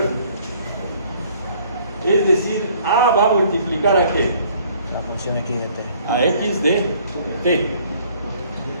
Es decir, a va a multiplicar a qué? La función x de t. A x de t. ¿De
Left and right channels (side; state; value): both; inverted; correlation -0.59